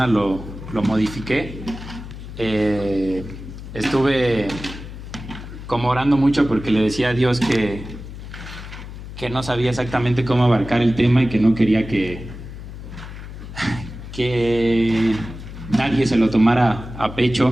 lo modifiqué. Estuve como orando mucho porque le decía a Dios que no sabía exactamente cómo abarcar el tema y que no quería que nadie se lo tomara a pecho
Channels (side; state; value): left; noise; hum, 12 dB below the sound